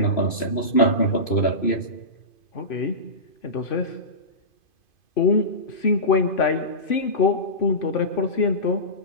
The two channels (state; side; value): late; right; 2.5 ms